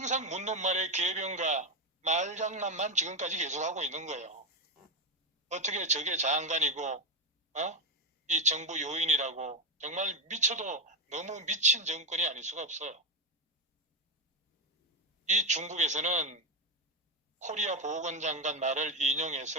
묻는 말에 개변과 말장난만 지금까지 계속하고 있는 거예요. 어떻게 저게 장관이고 이 정부 요인이라고 정말 미쳐도 너무 미친 정권이 아닐 수가 없어요. 이 중국에서는 코리아 보건장관 말을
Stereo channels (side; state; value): both; normal; correlation 0.09